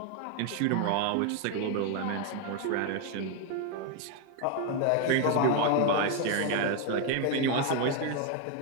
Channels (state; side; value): different; both; correlation 0.01